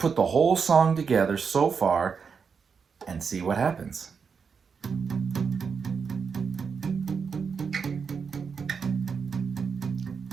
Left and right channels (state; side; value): quieter; left; 5.9 dB